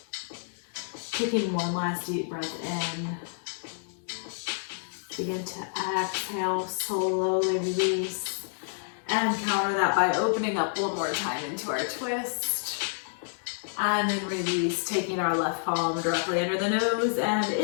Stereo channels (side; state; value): right; silent; digital silence